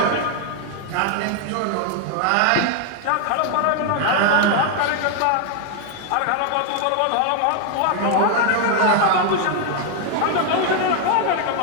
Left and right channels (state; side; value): different; both; correlation 0.00